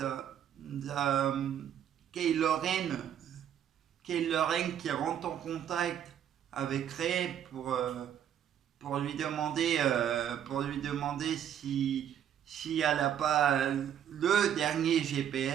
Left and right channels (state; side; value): quieter; left; 9.8 dB